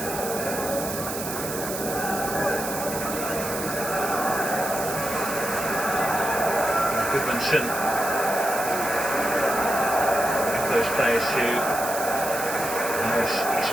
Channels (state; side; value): noise; right; hiss, 7 dB below the sound